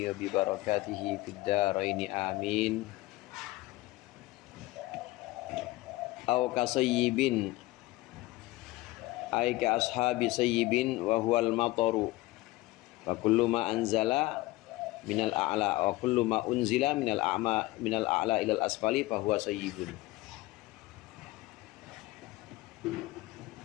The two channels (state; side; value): quieter; right; 19.3 dB